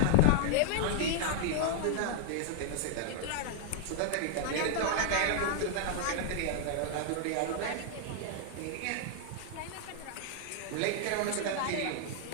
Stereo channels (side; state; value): both; different; correlation 0.00